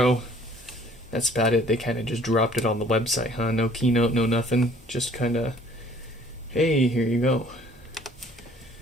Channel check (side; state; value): both; normal; correlation 0.56